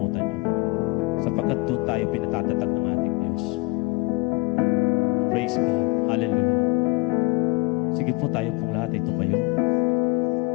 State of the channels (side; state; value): right; quieter; 22.6 dB